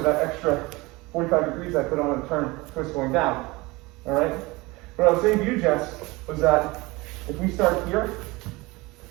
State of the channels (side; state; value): left; quieter; 23.0 dB